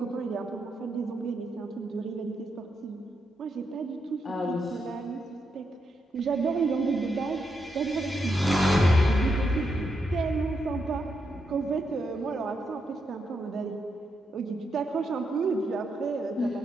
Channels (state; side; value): normal; both; correlation 0.82